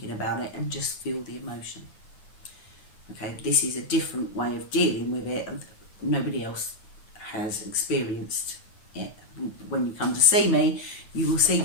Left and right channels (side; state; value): right; late; 9.3 ms